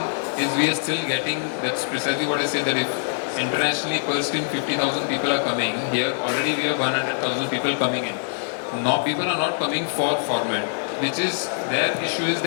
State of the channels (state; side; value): silent; right; 59 dB below the other